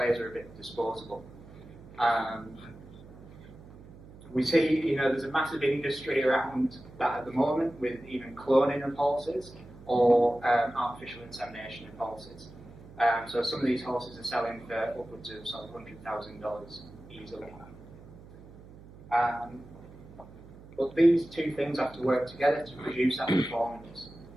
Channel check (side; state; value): right; noise; hum, 19 dB below the sound